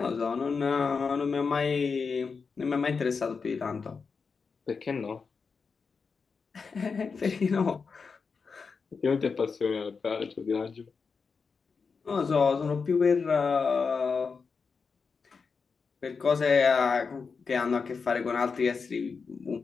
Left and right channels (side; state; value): right; quieter; 5.2 dB